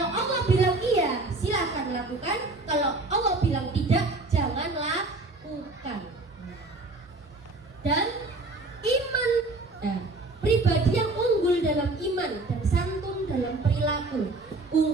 Allah bilang iya, silakan lakukan. Kalau Allah bilang tidak, jangan lakukan. Dan iman, pribadi yang unggul dalam iman dan santun dalam perilaku.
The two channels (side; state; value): left; quieter; 3.1 dB